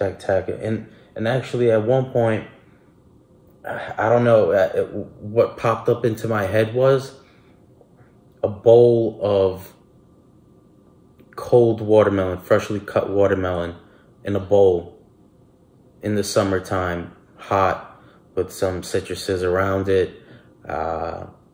And actually, at one point, I don't know, what popped up into my head was a bowl of cold watermelon, freshly cut watermelon in a bowl in the summertime, hot, with some citruses around it,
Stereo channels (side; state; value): both; identical; correlation 1.00